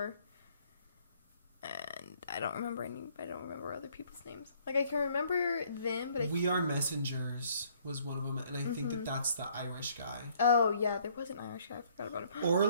And I don't remember other people's names. Like, I can remember them, but We Are Messengers was one of them, and I think that's the Irish guy. Oh, yeah, there was an Irish guy. I forgot about him.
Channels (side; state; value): both; inverted; correlation -0.62